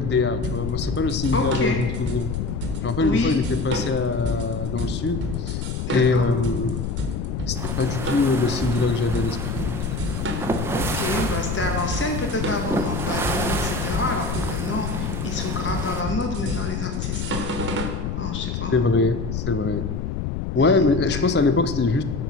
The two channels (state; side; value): noise; left; rumble, 3 dB below the sound